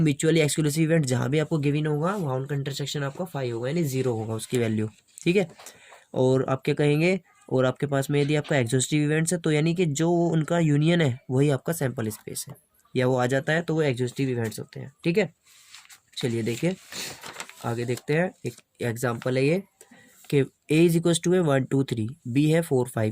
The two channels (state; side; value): identical; both; correlation 1.00